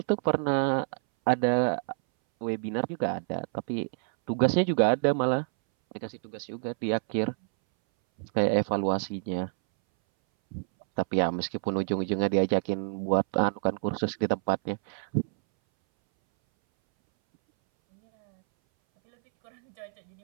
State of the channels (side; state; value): left; silent; 60 dB below the other